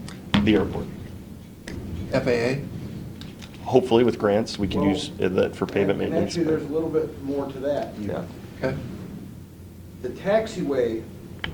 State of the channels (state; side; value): identical; both; correlation 1.00